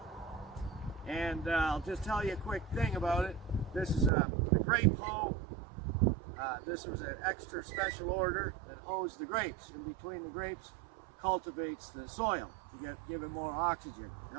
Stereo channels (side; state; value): left; drops out; at 4.1 s